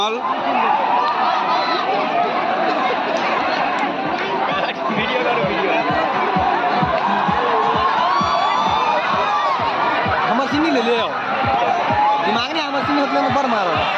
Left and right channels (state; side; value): identical; both; correlation 1.00